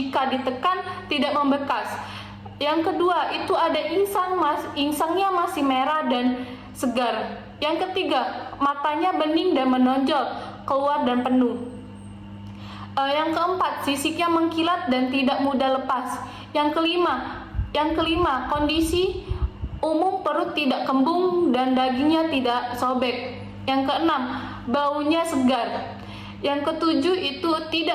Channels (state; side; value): identical; both; correlation 1.00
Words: ditekan tidak membekas. Yang kedua, itu ada insangnya masih merah dan segar. Yang ketiga, matanya bening dan menonjol keluar dan penuh. Yang keempat, sisiknya mengkilat dan tidak mudah lepas. Yang kelima, kondisi umum perut tidak kembung dan dagingnya tidak sobek. Yang keenam, baunya segar. Yang ketujuh, itu